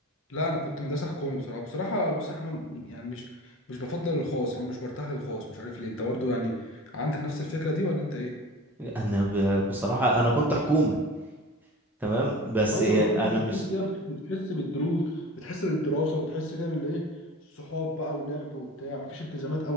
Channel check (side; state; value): both; normal; correlation 0.38